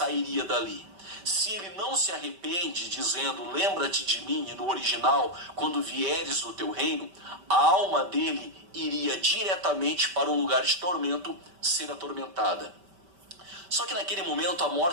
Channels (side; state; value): left; late; 5.1 ms